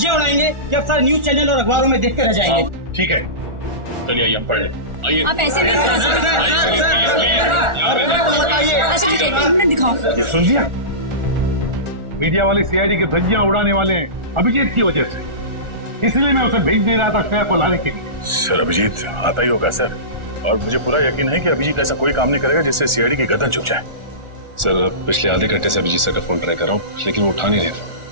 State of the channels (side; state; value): left; late; 1.4 ms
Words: उड़ाएंगे कि अब सारे न्यूज चैनल और अखबारों में देखते रह जाएंगे। ठीक है, चलिए आइए हम पढ़ लें। आप ऐसे नहीं करा सकते। अच्छा ठीक है, 1 मिनट दिखाओ। ये सुन लिया, मीडिया वाले सीआईडी की धज्जियां उड़ाने वाले हैं अभिजीत की वजह से, इसलिए मैं उसे भेज नहीं रहा था श्रेया को लाने के लिए। सर अभिजीत आता ही होगा सर, और मुझे पूरा यकीन है कि अभिजीत ऐसा कोई काम नहीं करेगा जिससे सीआईडी की गर्दन झुक जाए। सर पिछले आधे घंटे से अभिजीत सर का फोन ट्राई कर रहा हूँ, लेकिन वो उठा नहीं रहे फोन।